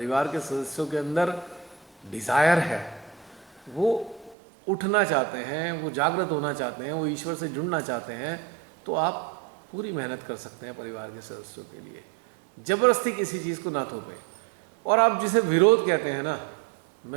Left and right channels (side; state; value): left; drops out; at 4.4 s